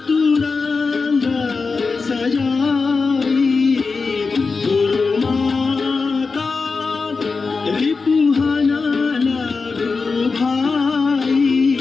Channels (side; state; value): right; quieter; 4.5 dB